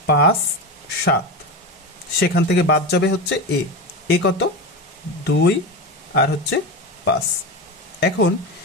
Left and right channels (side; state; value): both; normal; correlation 0.20